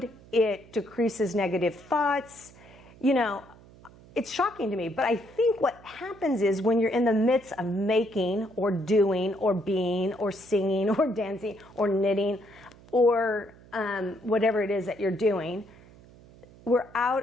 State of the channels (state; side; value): noise; right; hum, 23 dB below the sound